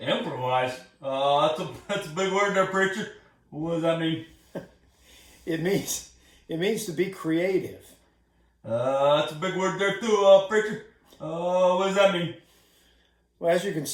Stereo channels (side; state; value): both; identical; correlation 1.00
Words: Improvise? That's a big word there, preacher. What does that mean? It means to be creative. That's a big word there too, preacher. What does that mean? Well, as you can